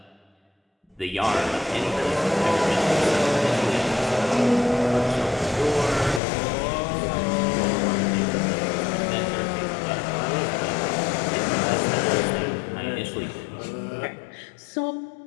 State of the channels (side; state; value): right; drops out; at 6.2 s